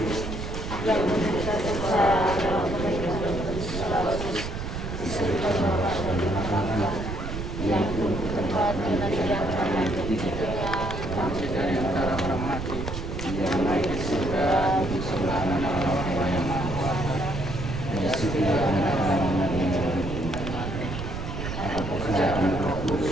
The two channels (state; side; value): noise; right; rumble, 6 dB below the sound